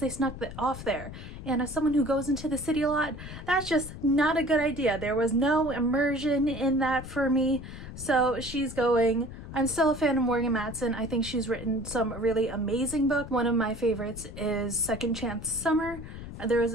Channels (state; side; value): noise; left; rumble, 11 dB below the sound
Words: snuck off there. And as someone who goes into the city a lot, that's just not a good idea. There was no immersion in that for me. So she's going. I'm still a fan of Morgan Matson. I think she's written some really amazing books. One of my favorites is Second Chance Summer. There is